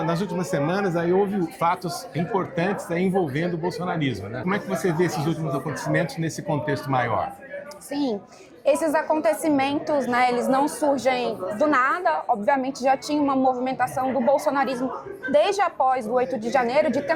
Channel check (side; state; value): both; identical; correlation 1.00